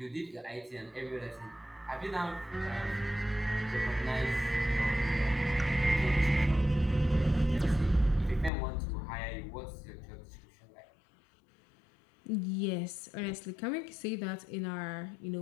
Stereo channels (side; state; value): right; drops out; at 8.5 s